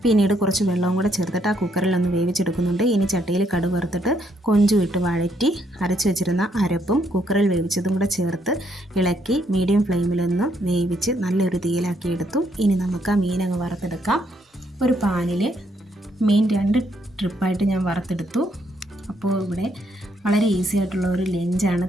പിന്നീട് കുറച്ച് വെള്ളവും കൂടെ ചേർത്തിട്ട് ആ കുക്കറിലൊന്ന് വേവിച്ചെടുക്കുന്നുണ്ട്. ഇനി ചട്ടിയിൽ കടുക് വറുത്തിട്ട് കൊഞ്ചും ഇട്ട് വഴറ്റി അരച്ച് വെച്ചിരുന്ന അരപ്പും കുക്കറിൽ വേവിച്ചതും കൂടെ ചേർത്ത് ഇളക്കി മീഡിയം ഫ്ലെയിമിലൊന്ന് വേവിച്ച് നല്ലൊരു തീയിലാക്കി എടുത്തു. ഇനി നമുക്ക് ആ മീനങ്ങ് വറുത്തെടുക്കാം. ഒരു പാനിൽ മീൻ 2 ട്രിപ്പായിട്ട് ഞാൻ വറുത്തെടുത്തു. അപ്പോൾ ഇവിടെ വളരെ ഈസി ആയിട്ടുള്ള ഒരു ലഞ്ചാണ്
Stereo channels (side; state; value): both; normal; correlation 0.73